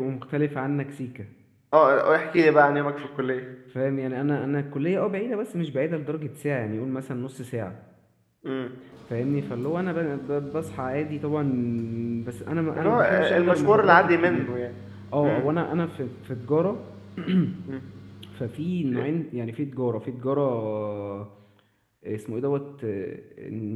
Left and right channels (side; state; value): both; identical; correlation 1.00